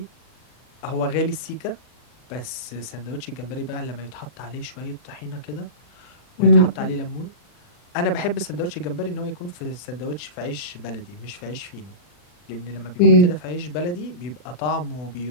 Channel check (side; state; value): right; late; 40 ms